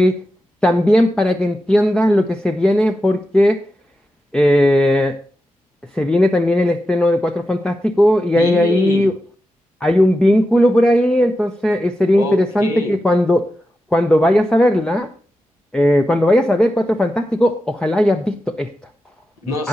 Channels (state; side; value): normal; both; correlation 0.90